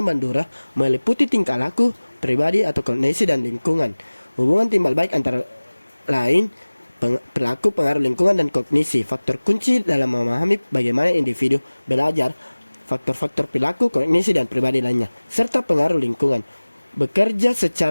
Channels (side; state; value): both; inverted; correlation -1.00